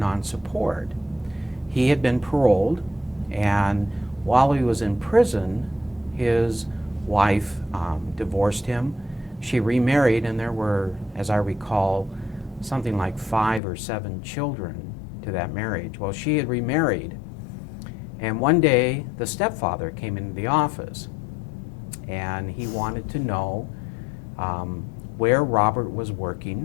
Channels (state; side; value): drops out; right; at 13.6 s